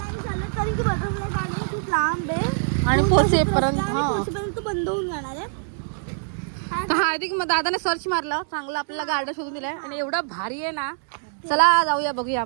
खूप लांब आहे आणि पोचेपर्यंत बंद होऊन जाणार आहे. हार्दिक मग दादाने सर्च मारलं, चांगलं आपल्याला गार्डन शोधून दिलंय. आणि एवढं भारी आहे ना. चला जाऊया, बघूया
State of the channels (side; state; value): left; silent; digital silence